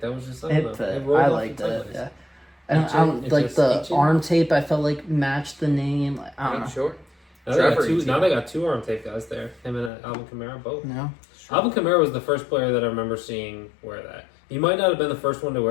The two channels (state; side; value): drops out; right; at 9.9 s